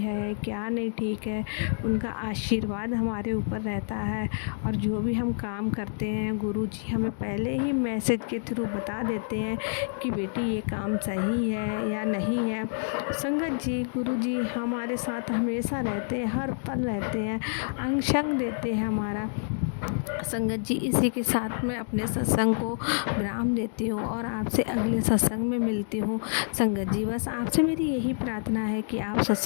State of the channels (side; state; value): right; silent; digital silence